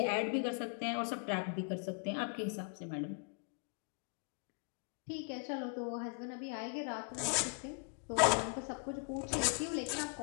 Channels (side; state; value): right; quieter; 35.9 dB